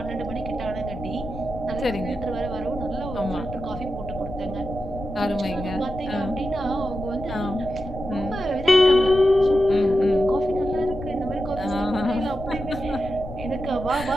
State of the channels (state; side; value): noise; left; rumble, 11 dB below the sound